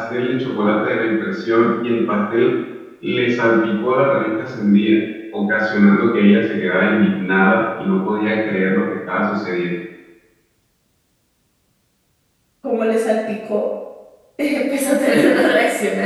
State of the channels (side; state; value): both; identical; correlation 1.00